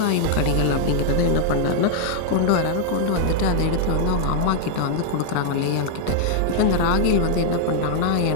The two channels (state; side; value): different; both; correlation -0.01